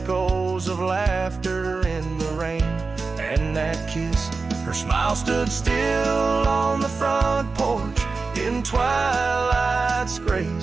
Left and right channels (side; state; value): left; quieter; 4.2 dB